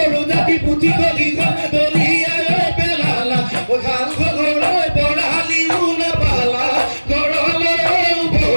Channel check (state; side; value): inverted; both; correlation -1.00